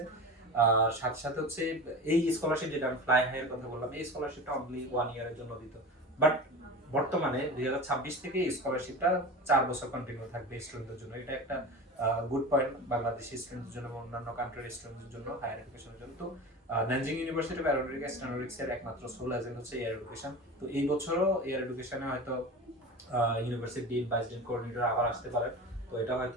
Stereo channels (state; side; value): normal; both; correlation 0.31